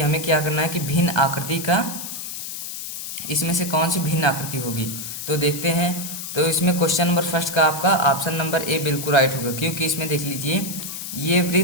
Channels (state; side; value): noise; left; hiss, 7 dB below the sound